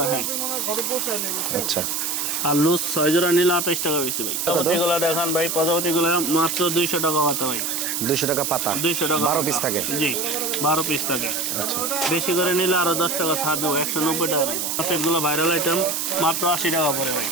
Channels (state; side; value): noise; right; hiss, 1 dB below the sound